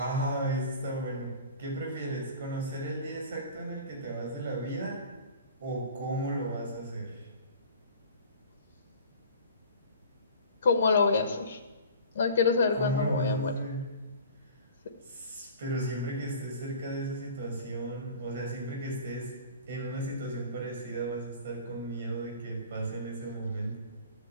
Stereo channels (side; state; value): both; inverted; correlation -0.42